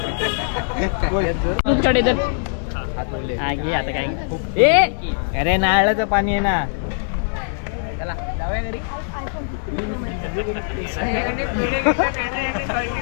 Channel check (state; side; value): silent; right; digital silence